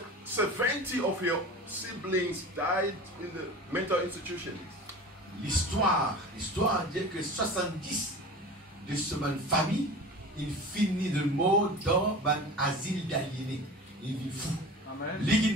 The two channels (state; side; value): normal; both; correlation 0.35